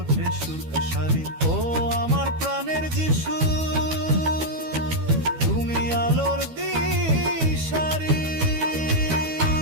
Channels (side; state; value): left; late; 12 ms